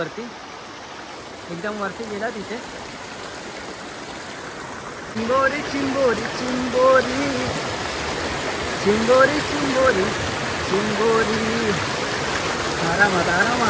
एकदम वरती गेला तिथे. चिंबोरी चिंबोरी चिंबोरी चिंबोरी चिंबोरी चिंबोरी. आरामात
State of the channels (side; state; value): both; identical; correlation 1.00